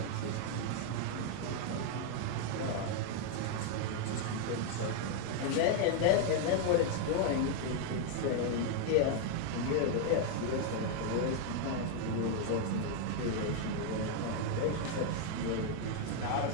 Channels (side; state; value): both; different; correlation 0.01